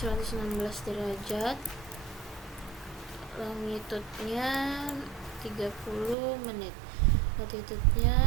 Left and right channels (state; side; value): drops out; left; at 6.2 s